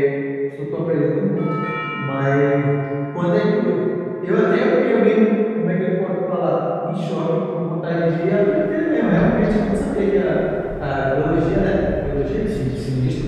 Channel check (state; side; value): identical; both; correlation 1.00